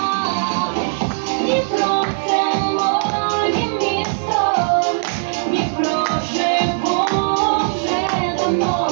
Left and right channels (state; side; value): silent; left; digital silence